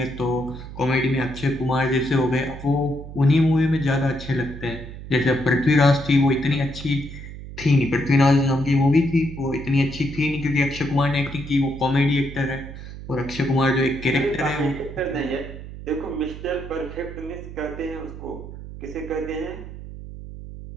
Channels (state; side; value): noise; right; hum, 12 dB below the sound